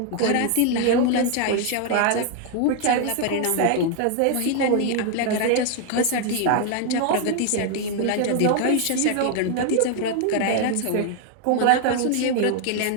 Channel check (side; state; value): both; different; correlation 0.00